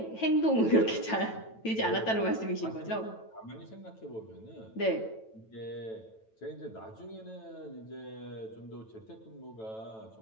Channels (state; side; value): late; right; 9.1 ms